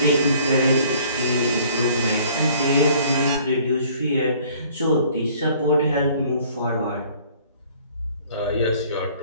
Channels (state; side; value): inverted; both; correlation -0.55